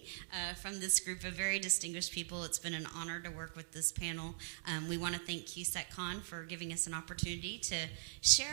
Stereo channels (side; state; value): left; silent; digital silence